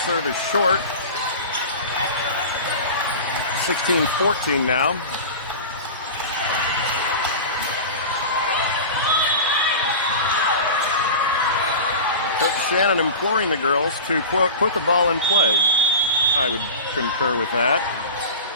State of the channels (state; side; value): inverted; both; correlation -0.31